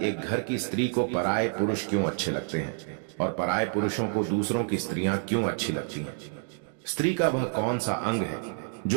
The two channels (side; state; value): left; silent; 59 dB below the other